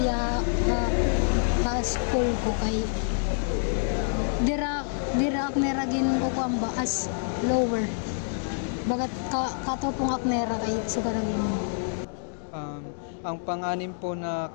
ya sa school ko kay dira akneragin ko kuan ba as lower. Bagat katopong aknera kay sugaragin mo. Ang pang-anim po na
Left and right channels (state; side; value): silent; right; digital silence